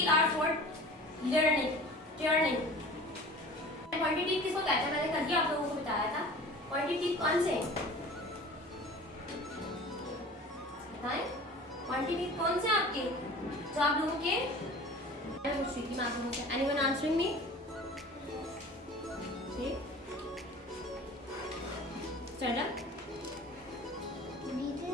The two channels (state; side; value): normal; both; correlation 0.41